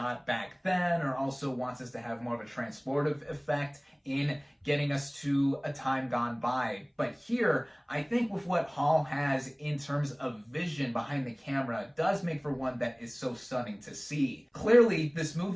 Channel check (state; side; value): identical; both; correlation 1.00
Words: back then, or also wants us to have more of a transportive effect in getting us to a time gone by. But here, I think with what Hall has in terms of vision behind the camera does make for one that is so stunning to see. Clearly, this